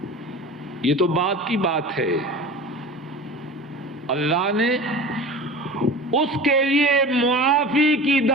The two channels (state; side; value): normal; both; correlation 0.35